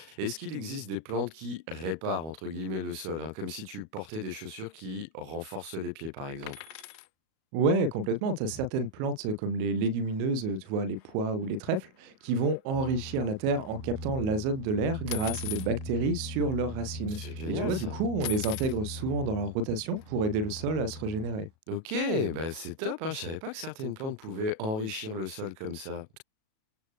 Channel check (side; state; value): left; late; 37 ms